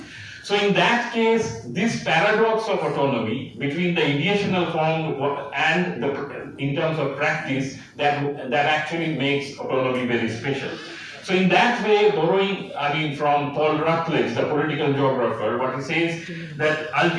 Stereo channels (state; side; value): identical; both; correlation 1.00